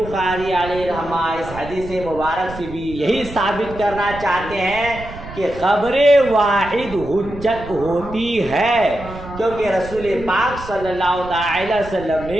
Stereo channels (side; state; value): right; noise; rumble, 13 dB below the sound